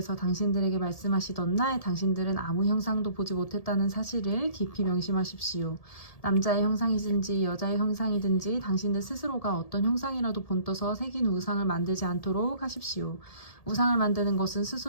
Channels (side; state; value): right; late; 1.7 ms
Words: 당신들에게 말씀하시던 날 당신들은 아무 형상도 보지 못했다는 사실을 깊이 명심하십시오. 남자의 형상이든지 여자의 형상이든지 당신들 스스로가 어떤 형상이라도 본떠서 새긴 우상을 만들지 않도록 하십시오. 우상을 만드는 것은